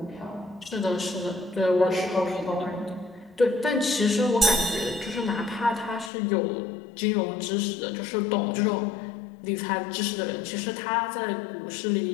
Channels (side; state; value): right; drops out; at 6.1 s